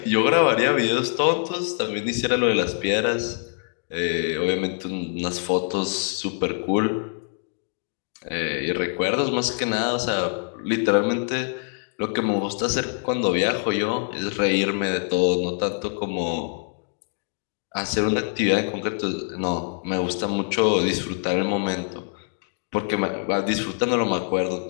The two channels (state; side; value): silent; right; digital silence